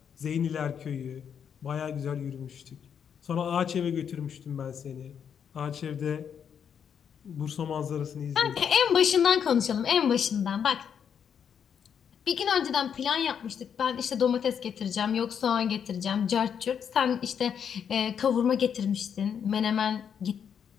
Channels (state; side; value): quieter; right; 7.8 dB